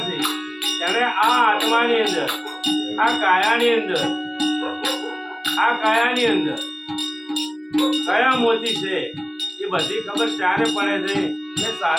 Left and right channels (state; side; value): identical; both; correlation 1.00